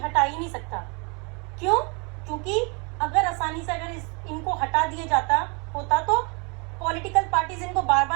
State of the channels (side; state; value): left; quieter; 33.2 dB